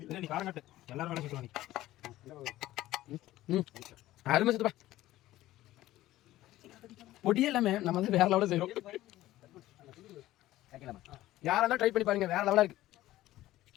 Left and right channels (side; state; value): right; quieter; 15.5 dB